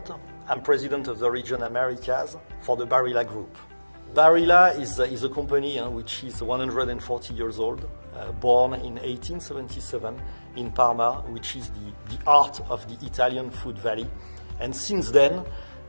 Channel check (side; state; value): both; inverted; correlation -1.00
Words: I'm president of the region Americas for the Barilla Group. Barilla is a company which is 140 years old, born in 1877 in Parma, which is the heart of the Italian food valley. And since then,